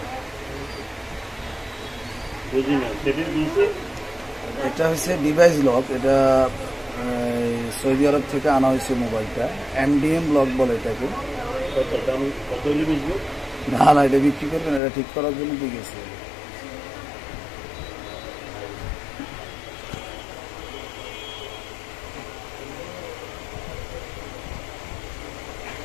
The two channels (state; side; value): drops out; right; at 14.8 s